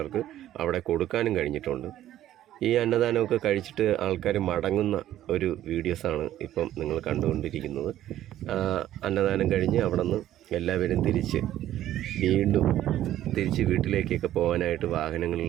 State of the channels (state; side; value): quieter; left; 12.8 dB